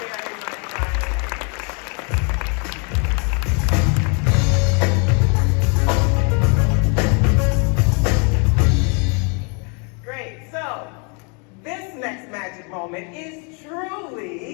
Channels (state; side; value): quieter; right; 35.9 dB